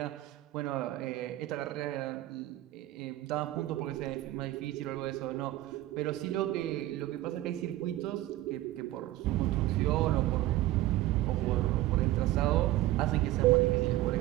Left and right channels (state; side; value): quieter; left; 15.9 dB